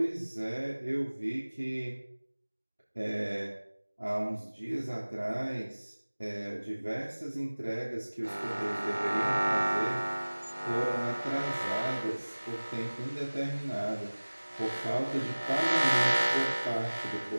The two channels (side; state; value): both; inverted; correlation -1.00